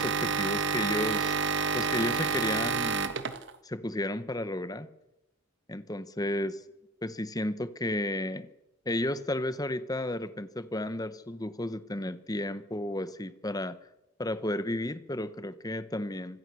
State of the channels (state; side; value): normal; both; correlation 0.39